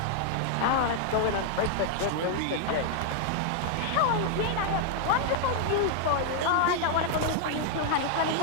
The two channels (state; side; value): different; both; correlation 0.00